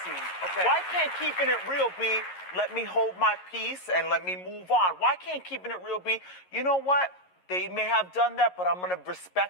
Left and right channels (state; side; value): late; right; 11 ms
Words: Okay. Why can't keeping it real be let me hold my peace and let me move on? Why can't keeping it real be, you know what? They may have done that, but I'm going to